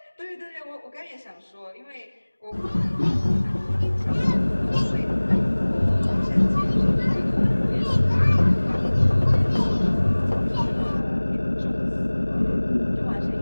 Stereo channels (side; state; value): both; inverted; correlation -1.00